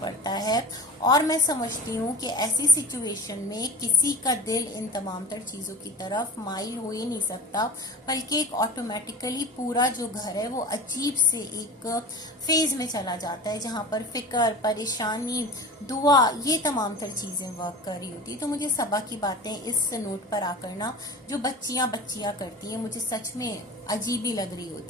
है। और मैं समझती हूँ कि ऐसी सिचुएशन में किसी का दिल इन तमाम तर चीजों की तरफ माइल हो ही नहीं सकता, बल्कि एक ऑटोमेटिकली पूरा जो घर है वो अजीब से एक फेज में चला जाता है जहाँ पर फिक्र, परेशानी, दुआ, ये तमाम तर चीज़ें वर्क कर रही होती। तो मुझे सबा की बातें इस नोट पर आकर ना जो बच्चियाँ करती हैं मुझे सच में अजीब ही लग रही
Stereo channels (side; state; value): both; normal; correlation 0.33